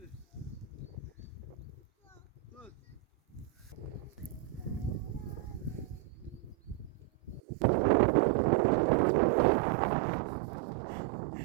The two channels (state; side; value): drops out; left; at 7.4 s